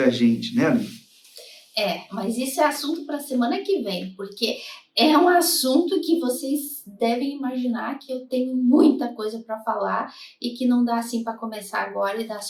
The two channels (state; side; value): identical; both; correlation 1.00